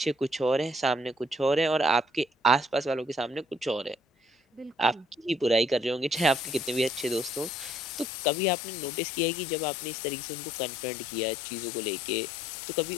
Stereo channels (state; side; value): drops out; right; at 8.1 s